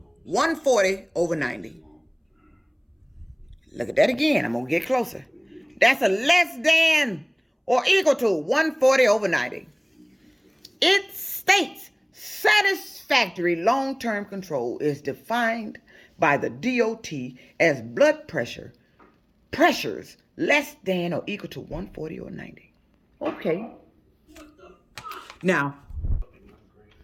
140/90. Look at that again. I'm going to get closer. That's a less than or equal to 140/90. It states satisfactory long-term control is defined by the DOT as blood pressures less than or equal to 140/90. Okay. Now,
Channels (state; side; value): identical; both; correlation 1.00